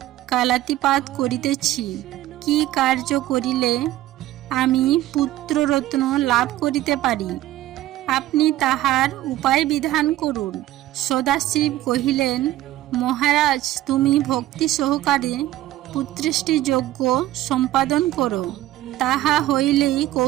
কালাতিপাত করিতেছি। কি কার্য করিলে আমি পুত্ররত্ন লাভ করিতে পারি, আপনি তাহার উপায় বিধান করুন। সদাশিব কহিলেন, মহারাজ, তুমি ভক্তি সহকারে পুত্রেষ্টি যজ্ঞ সম্পাদন করো। তাহা হইলেই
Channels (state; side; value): quieter; left; 14.9 dB